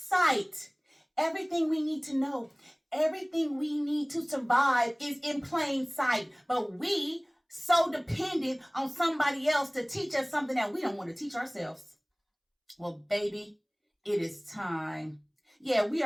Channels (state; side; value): identical; both; correlation 1.00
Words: Everything we need to know, everything we need to survive is in plain sight. But we so dependent on somebody else to teach us something that we don't want to teach ourselves. Well, baby, it is time. Yeah, we